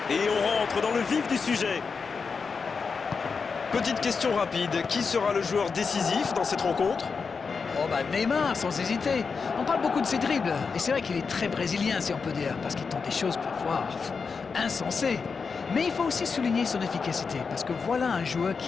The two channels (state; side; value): quieter; right; 5.2 dB